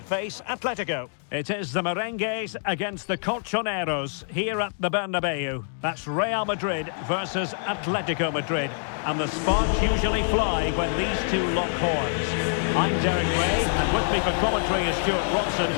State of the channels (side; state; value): right; silent; digital silence